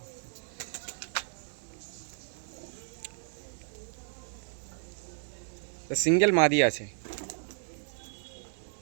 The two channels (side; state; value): left; silent; digital silence